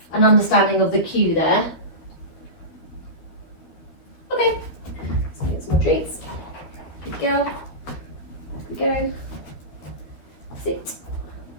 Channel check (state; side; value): late; right; 12 ms